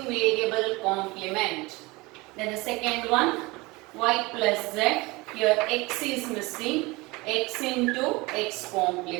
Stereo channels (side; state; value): left; quieter; 23.3 dB